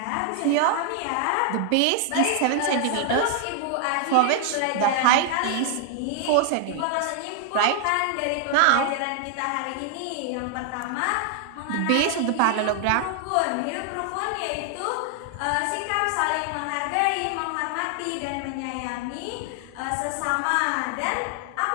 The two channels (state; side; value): different; both; correlation 0.00